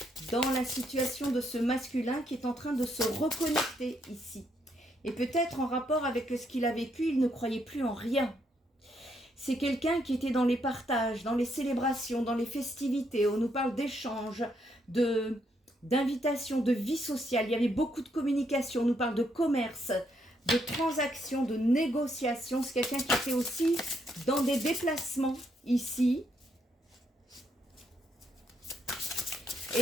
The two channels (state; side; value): normal; both; correlation 0.75